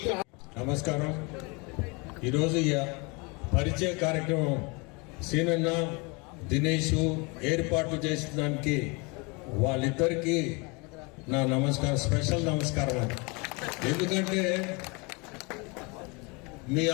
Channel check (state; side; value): quieter; right; 29.2 dB